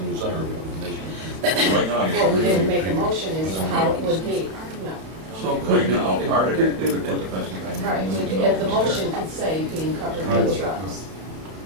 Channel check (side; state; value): left; late; 32 ms